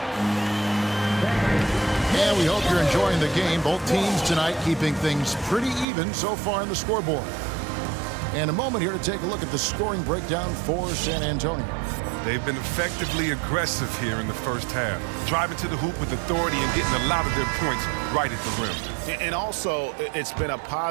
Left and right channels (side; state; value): left; drops out; at 5.9 s